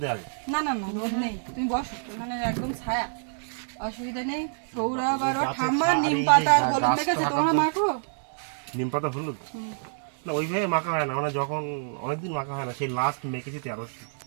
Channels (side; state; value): left; silent; digital silence